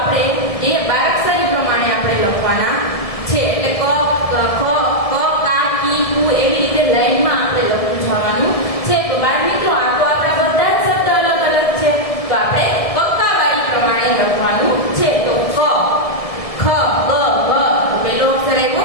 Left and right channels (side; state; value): right; late; 1.7 ms